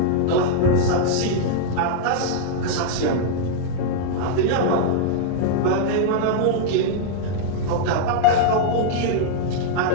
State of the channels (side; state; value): both; different; correlation -0.02